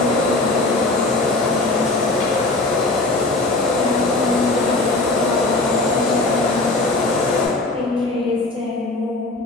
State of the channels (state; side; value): quieter; right; 3.0 dB